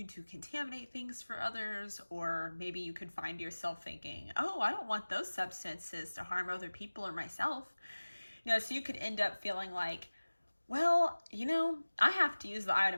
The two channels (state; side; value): inverted; both; correlation -1.00